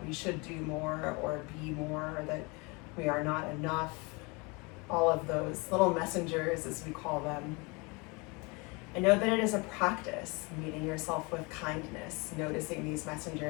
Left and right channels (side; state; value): right; quieter; 28.1 dB